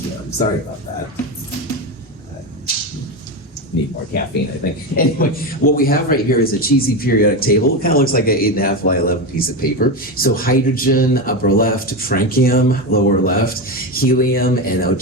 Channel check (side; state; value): both; normal; correlation 0.15